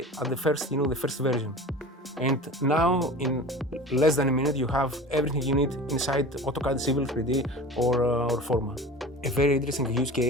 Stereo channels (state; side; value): normal; both; correlation 0.36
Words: at the first version. And now, in less than a minute, you have everything you need inside AutoCAD Civil 3D or Forma. A very interesting use